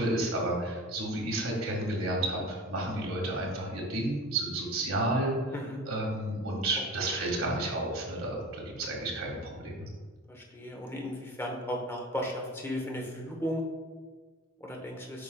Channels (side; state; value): both; normal; correlation 0.35